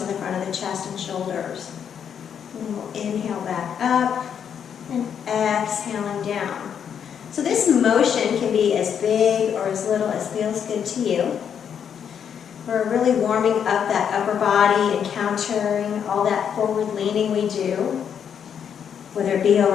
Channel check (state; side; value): quieter; right; 8.0 dB